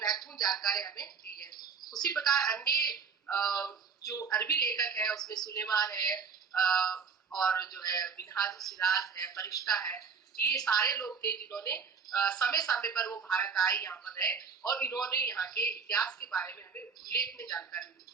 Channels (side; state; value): left; quieter; 5.9 dB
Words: जानकारी हमें दी है। उसी प्रकार अन्य जो अरबी लेखक है, उसमें सुलेमान है और जो है मिनहाजुल सिराज है, फरिश्ता है, ये सारे लोग थे जिन्होंने समय समय पर वो भारत आए, यहाँ पर रहे और इन्होंने यहाँ के इतिहास के बारे में हमें उल्लेखनीय जानकारी दी।